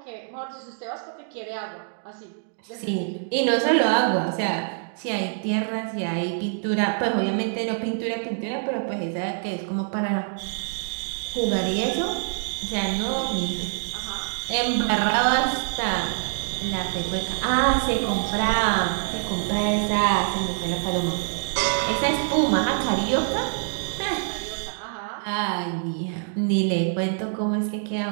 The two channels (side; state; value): left; silent; digital silence